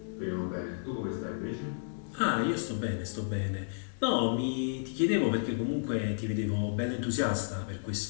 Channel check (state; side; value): silent; right; digital silence